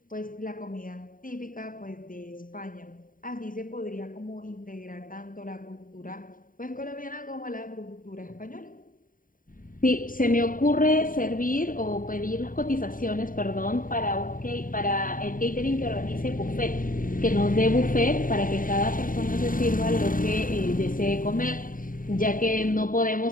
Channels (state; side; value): late; right; 0.40 ms